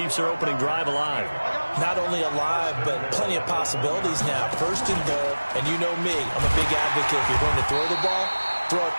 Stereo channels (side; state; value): both; inverted; correlation -1.00